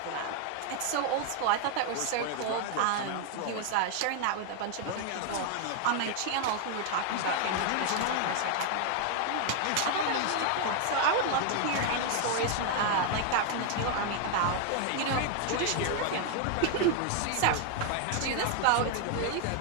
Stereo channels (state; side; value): different; both; correlation 0.00